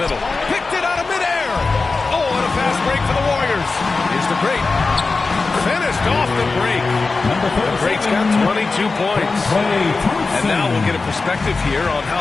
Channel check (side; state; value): right; quieter; 4.0 dB